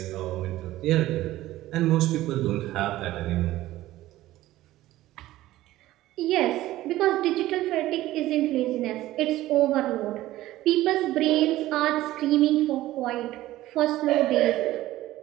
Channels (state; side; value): quieter; left; 15.7 dB